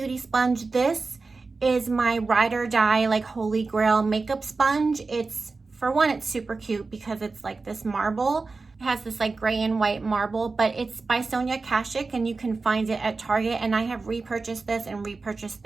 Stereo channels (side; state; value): left; quieter; 4.0 dB